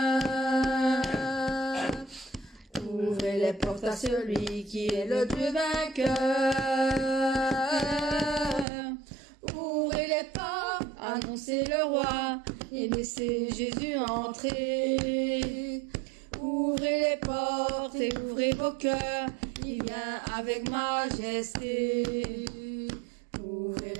Ouvrez les portes à celui qui est le Dieu vainqueur. Ouvrez les portes, annoncez le roi et laissez Jésus entrer. Ouvrez les portes et ouvrez vos cœurs, il vient avec majesté. Ouvrez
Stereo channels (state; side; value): drops out; left; at 8.7 s